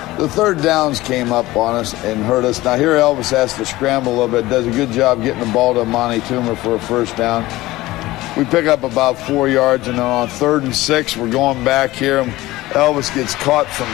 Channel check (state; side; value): quieter; right; 18.0 dB